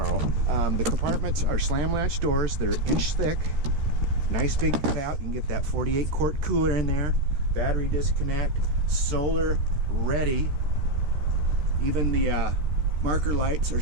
The compartments are slam latch doors. They're 1 inch thick. Nice big cutout. You can get that 48 quart cooler in there. Battery disconnect. Solar ready. Even the marker lights are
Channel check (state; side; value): late; left; 14 ms